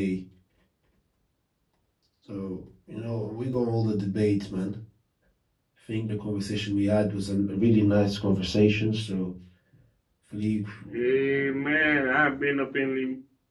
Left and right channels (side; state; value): both; identical; correlation 1.00